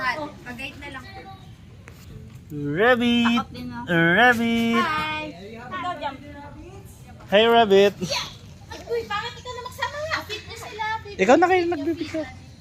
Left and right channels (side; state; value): both; identical; correlation 1.00